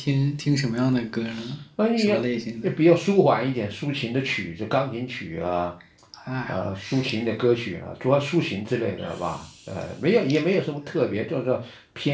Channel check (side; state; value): both; identical; correlation 1.00